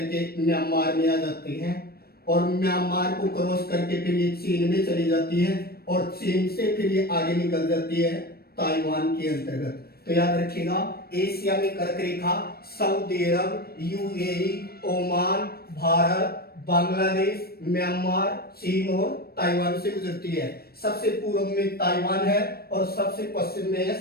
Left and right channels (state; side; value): late; right; 0.45 ms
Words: म्यांमार में आ जाती हैं और म्यांमार को क्रॉस करके फिर ये चीन में चली जाती है और चीन से फिर ये आगे निकल जाती है ताइवान के अंतर्गत। तो याद रखिएगा एशिया में कर्क रेखा Saudi Arab, UAE, Oman, Bharat, Bangladesh, Myanmar, चीन और ताइवान से गुजरती है। सबसे पूर्व में ताइवान है और सबसे पश्चिम में है